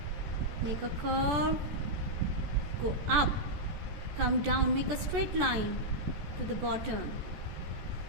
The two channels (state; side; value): late; left; 14 ms